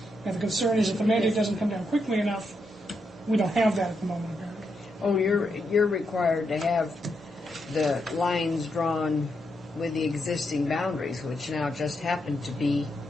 And the concern is if the mandate doesn't come down quickly enough, we don't have that at the moment, apparently. Oh, you're required to have the lines drawn with the existing boundaries, which now just happen to be,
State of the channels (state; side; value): normal; both; correlation 0.82